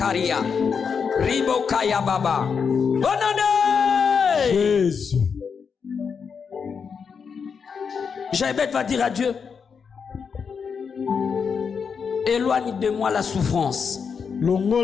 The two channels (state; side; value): quieter; right; 6.1 dB